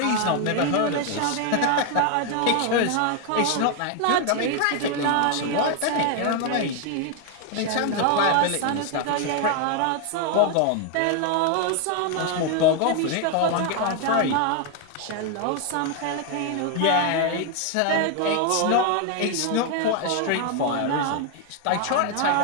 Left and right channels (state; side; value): different; both; correlation 0.01